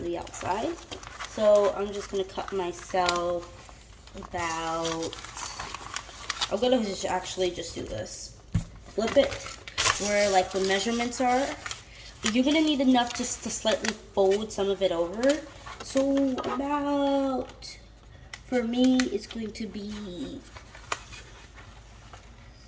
the outside. So I'm just going to cut myself about, I'm going to just actually just do this. Flip it where like the measurements are. You're going to need enough just to slightly fold some of it over. So about, for me, it's going to be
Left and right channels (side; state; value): both; identical; correlation 1.00